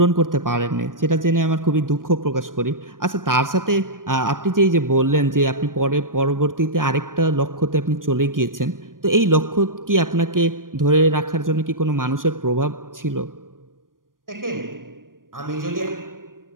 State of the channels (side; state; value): left; late; 0.90 ms